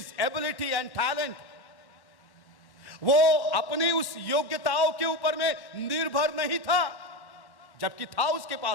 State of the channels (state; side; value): late; right; 1.1 ms